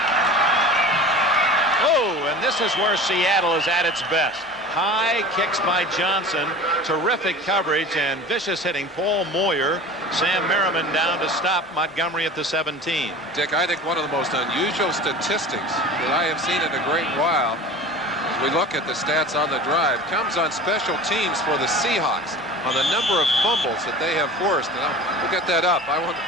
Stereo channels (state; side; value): normal; both; correlation 0.37